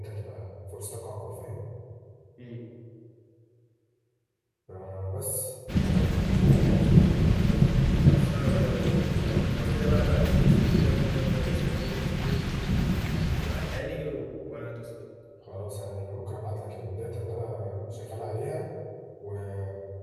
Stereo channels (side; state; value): both; identical; correlation 1.00